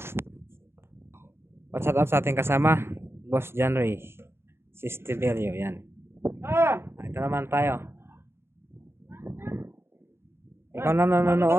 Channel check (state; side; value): late; left; 0.12 ms